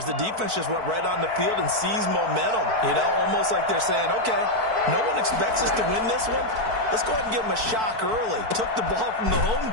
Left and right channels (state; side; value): late; left; 4.5 ms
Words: The defense just went right on the field and seized momentum. Almost like they're saying, okay, no one expects us to win this one. Let's go ahead and give them a shock early. Took the ball from the home